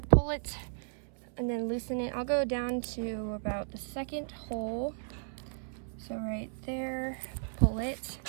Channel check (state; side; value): silent; left; 55 dB below the other